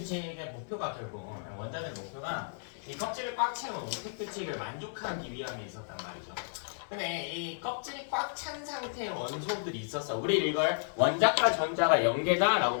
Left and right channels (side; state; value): right; silent; 56 dB below the other